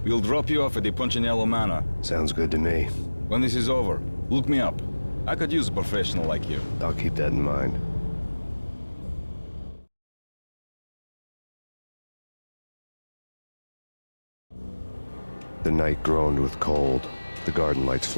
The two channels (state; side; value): inverted; both; correlation -1.00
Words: We'll drop you off at the Punchinello Manor. Sounds good to me. When this is over, look me up. I could use a professional like you. I'll keep that in mind. The night groaned with cold. The garden lights